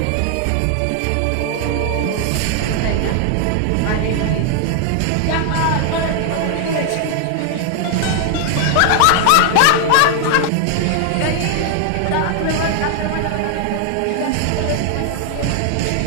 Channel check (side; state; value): both; different; correlation 0.00